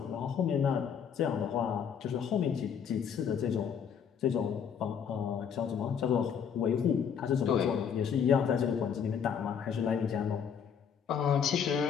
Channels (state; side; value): quieter; right; 7.5 dB